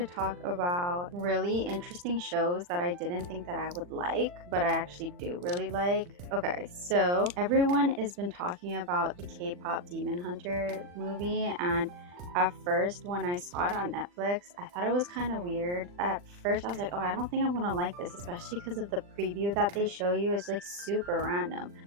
talk about really interesting shows that I didn't think that I would like, but I actually do really like. Okay, so everyone has been talking about the K-pop Demon Hunter movie, and at first when I saw it on Netflix, I thought it was kind of weird. At first I was like, oh, I don't think I'm gonna like this, especially because of the preview that they show you is like super random.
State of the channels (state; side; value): late; left; 40 ms